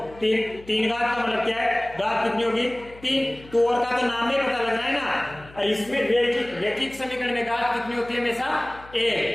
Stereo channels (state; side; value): noise; left; hum, 21 dB below the sound